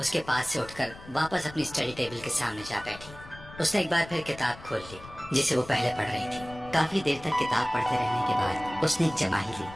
उसके पास से उठकर वापस अपनी स्टडी टेबल के सामने जा बैठी। उसने एक बार फिर किताब खोल ली जिसे वो पहले पढ़ रही थी। काफी देर तक किताब पढ़ते रहने के बाद उसने एक जमाही ली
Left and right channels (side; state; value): left; noise; rumble, 17 dB below the sound